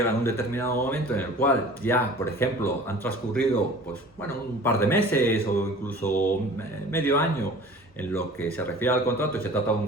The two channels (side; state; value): both; normal; correlation 0.44